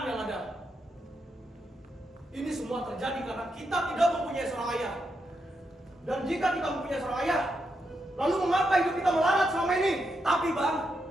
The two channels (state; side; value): normal; both; correlation 0.83